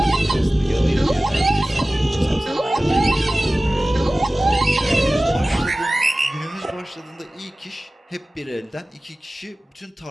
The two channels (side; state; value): both; normal; correlation 0.97